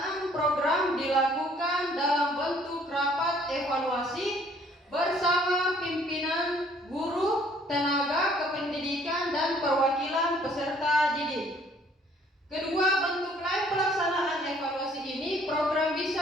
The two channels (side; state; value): both; normal; correlation 0.60